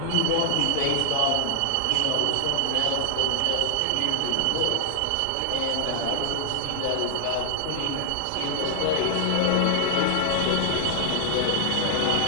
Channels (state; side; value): different; both; correlation 0.00